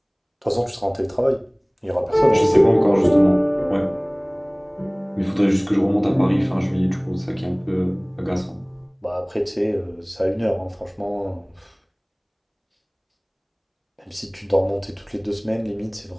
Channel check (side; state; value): both; identical; correlation 1.00